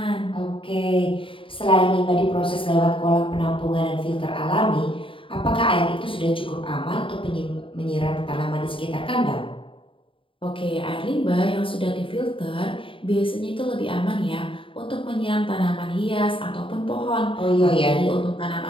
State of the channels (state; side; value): late; right; 0.25 ms